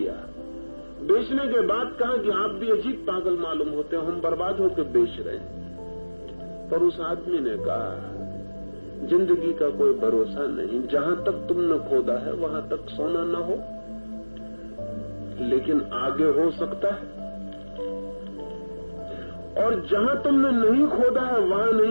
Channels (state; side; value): inverted; both; correlation -1.00